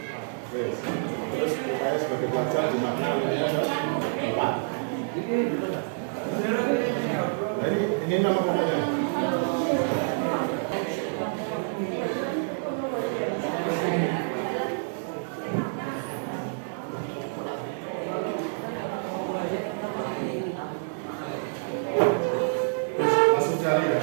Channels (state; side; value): silent; left; 60 dB below the other